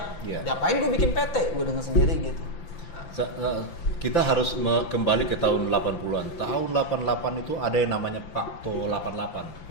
Ngapain gue bikin PT, gue dengan sendiri gitu. Kita harus kembali ke tahun 80-an. Tahun 88 itu ada yang namanya Pakto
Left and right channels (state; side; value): late; right; 5.9 ms